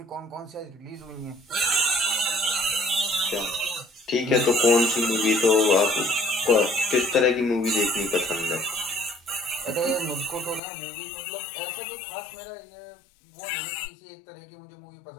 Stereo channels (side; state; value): right; drops out; at 10.6 s